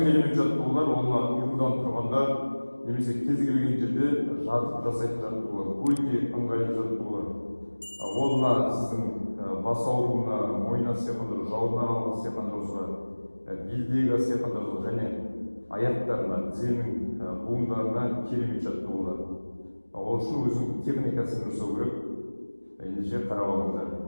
жаттығулар олар ұйқыдан тұрғанда немесе кез келген жерде жатып жасайтын жаттығулар. Өте ыңғайлы жаттығулар. Ол мына сіздің бас ауруына, мойын астиқандыру, жауырын аралық астиқандыруға, белдегі астиқандыруға және аяқтарына, тізенің буындарына керемет жаттығулар. Ол үшін өзінің техникасын жасау керек. Ендеше қарап алыңыздар.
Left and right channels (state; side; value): inverted; both; correlation -1.00